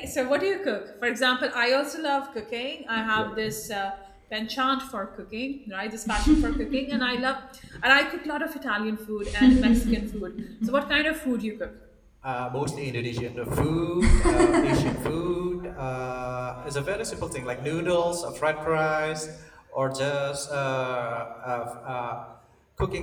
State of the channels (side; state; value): both; identical; correlation 1.00